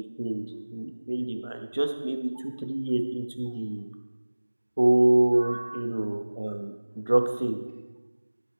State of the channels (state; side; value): inverted; both; correlation -1.00